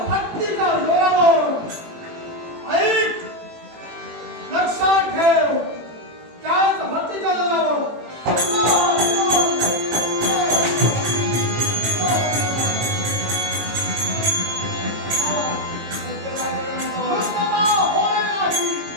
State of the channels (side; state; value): left; late; 18 ms